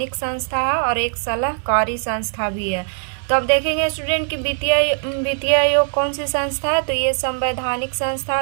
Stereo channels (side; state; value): left; silent; digital silence